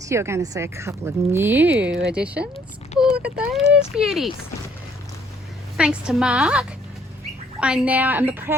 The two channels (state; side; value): normal; both; correlation 0.64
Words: you're going to see a couple of new additions. Look at those beauties. Thanks to Mark, I now am the